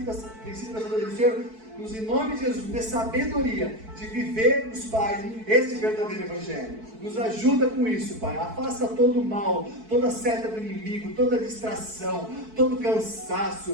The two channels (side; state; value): left; late; 4.6 ms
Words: da sabedoria do Senhor. Nos, em nome de Jesus, dê sabedoria de vivermos, Pai, esse verdadeiro Evangelho. Nos ajuda com isso, Pai. Afasta todo o mal, toda seta do inimigo, toda distração, todo